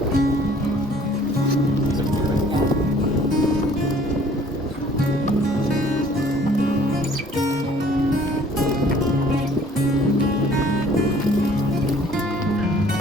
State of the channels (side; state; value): both; normal; correlation 0.55